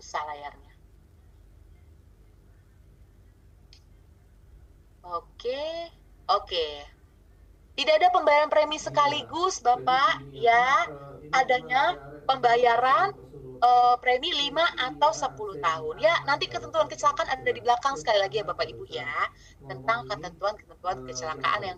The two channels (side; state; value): both; identical; correlation 1.00